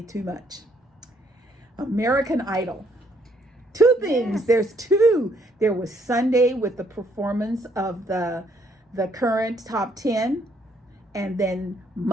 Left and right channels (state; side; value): normal; both; correlation 0.68